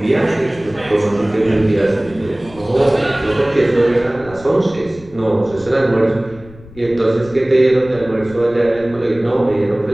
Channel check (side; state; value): left; noise; rumble, 20 dB below the sound